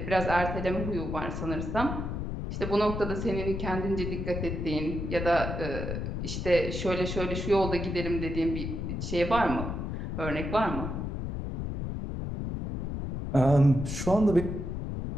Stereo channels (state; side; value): noise; left; rumble, 4 dB below the sound